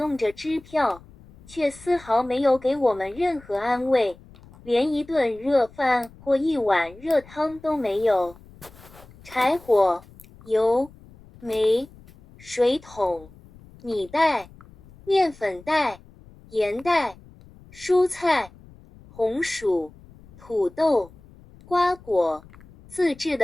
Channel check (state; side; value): noise; left; rumble, 23 dB below the sound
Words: 着支票，却丝毫没有给我们任何安慰，连一顿热饭或一碗热汤都没有。柴火、油、煤、水桶、米袋、面粉袋、盐袋、蔬菜、红薯、土豆、瓜果、自制